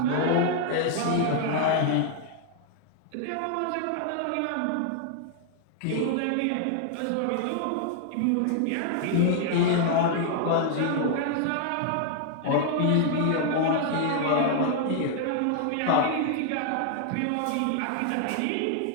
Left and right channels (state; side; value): different; both; correlation 0.00